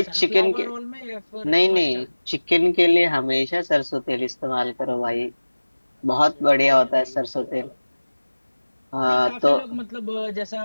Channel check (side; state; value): both; inverted; correlation -1.00